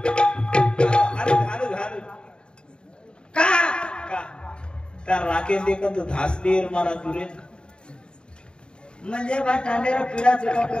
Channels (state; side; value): late; right; 0.051 ms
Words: हालू हालू हालू का का त्या राखेल देखत धासलीर मला दुरे म्हणजे बा टांडेरा पिढा चुका